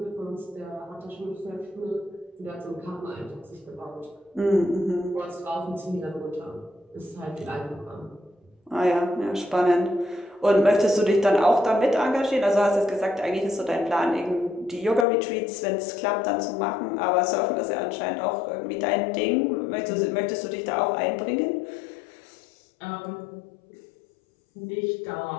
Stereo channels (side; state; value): right; drops out; at 15.1 s